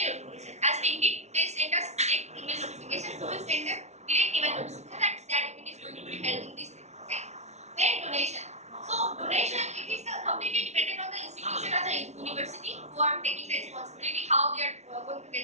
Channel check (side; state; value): left; late; 0.32 ms